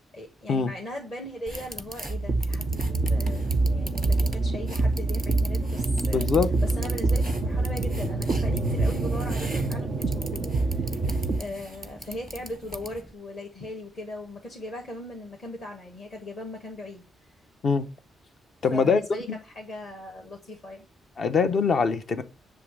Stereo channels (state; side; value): normal; both; correlation 0.76